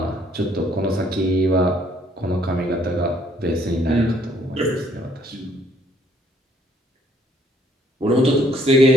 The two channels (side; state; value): both; normal; correlation 0.64